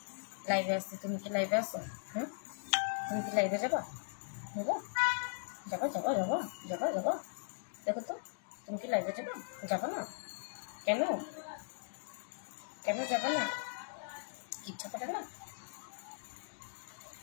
তুমি কি লাইভে আসো? তুমি কি লাইভে যাবা? যাবো যাবো যাবো যাবো যাবো যাবো দেখো তো, তুমি কি লাইভে যাবা? যাবো না কেন? কেন যাবো না? ইচ্ছা করে না?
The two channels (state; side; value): silent; right; digital silence